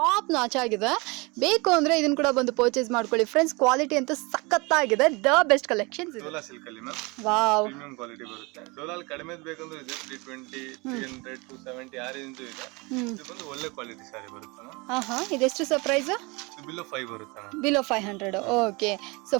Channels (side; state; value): left; quieter; 26.9 dB